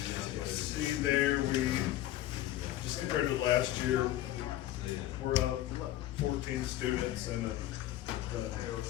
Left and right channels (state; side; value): quieter; right; 14.2 dB